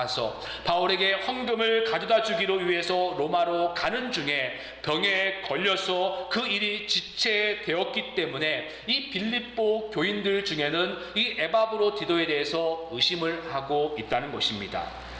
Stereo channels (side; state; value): both; identical; correlation 1.00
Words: 바울에게 헌금을 가져다 주기로 위해서 로마로 가는 중에 병에 걸려서 그 일이 지체되었기 때문에 이 빌립보 교인들 중에는 이 에바브로디도에 대해서 의심을 하고 있다는 것입니다.